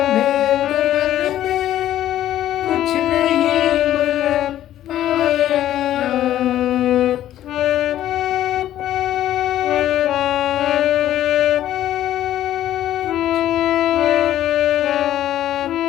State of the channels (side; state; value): right; quieter; 12.5 dB